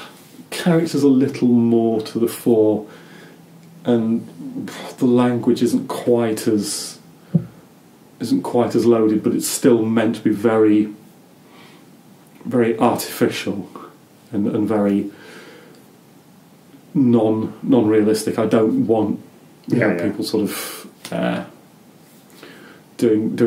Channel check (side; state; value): both; identical; correlation 1.00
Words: character's a little more to the fore, and the language isn't quite as loaded, but it's still meant to be very, very artificial and very non-realistic. I don't want people sort of